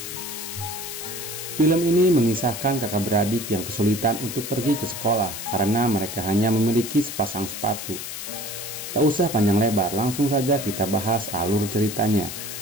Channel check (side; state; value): left; noise; hiss, 7 dB below the sound